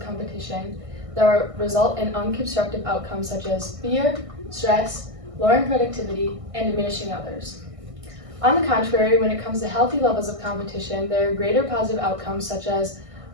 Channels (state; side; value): late; left; 1.6 ms